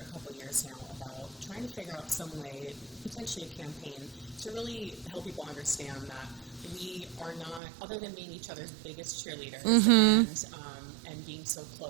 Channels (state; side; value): drops out; left; at 7.6 s